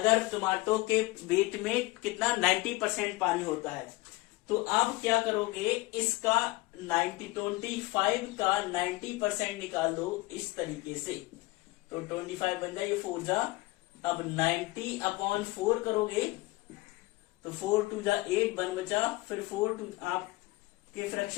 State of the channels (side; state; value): right; quieter; 21.4 dB